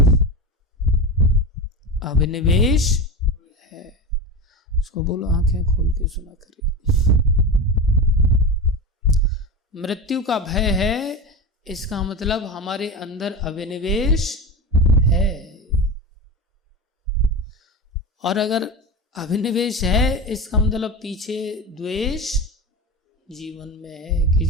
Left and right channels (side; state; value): both; normal; correlation 0.23